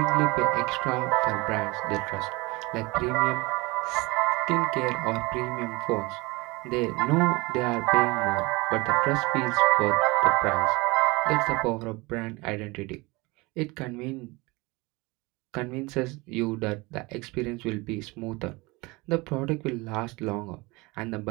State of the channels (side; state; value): left; quieter; 24.2 dB